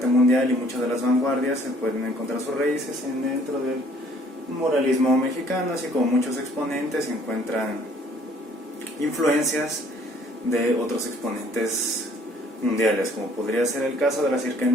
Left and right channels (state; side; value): normal; both; correlation 0.59